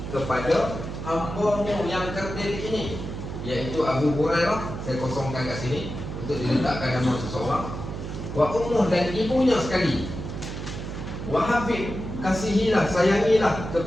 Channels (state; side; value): noise; right; hum, 7 dB below the sound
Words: kepada hamba-Mu yang kerdil ini, iaitu Abu Hurairah. Saya kosongkan kat sini untuk diletakkan nama seseorang. Wa ummuh, dan ibunya sekali. Wa habib, kasihilah, sayangilah